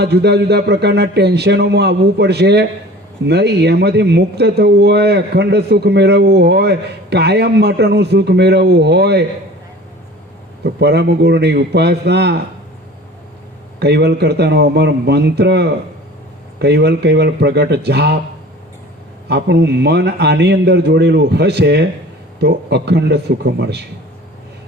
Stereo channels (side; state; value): both; normal; correlation 0.43